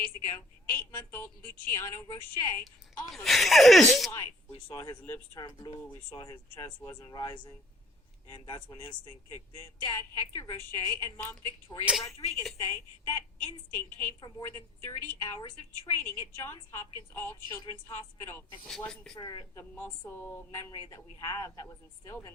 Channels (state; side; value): normal; both; correlation 0.58